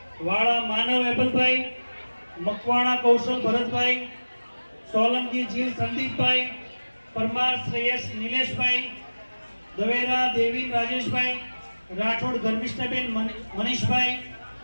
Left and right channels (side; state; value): both; inverted; correlation -1.00